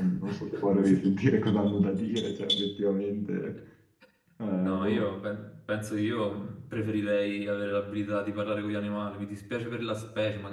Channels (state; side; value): identical; both; correlation 1.00